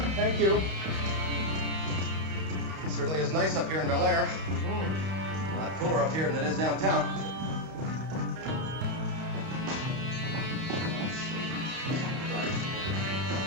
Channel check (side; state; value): left; late; 31 ms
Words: Thank you. It certainly is nice up here in Bel Air. A lot cooler up here than it is downtown.